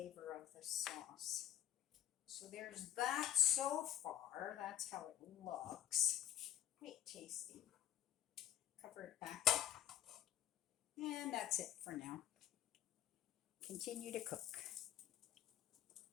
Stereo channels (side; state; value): right; quieter; 10.8 dB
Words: of the sauce. So there's that so far. That's how it looks. Quite tasty. Cover it back up. And that's it for now. Continue to cook.